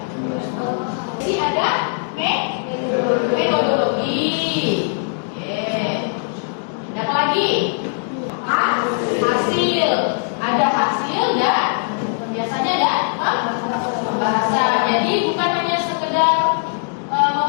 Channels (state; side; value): silent; right; digital silence